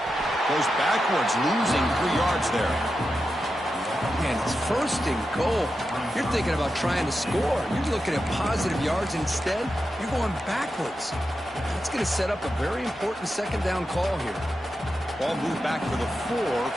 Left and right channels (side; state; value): both; normal; correlation 0.89